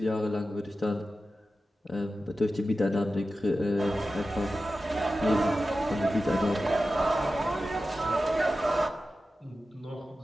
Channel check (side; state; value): both; normal; correlation 0.93